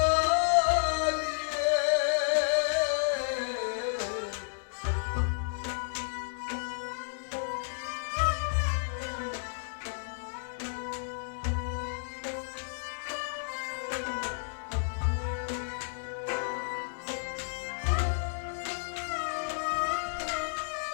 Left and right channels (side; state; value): right; silent; 57 dB below the other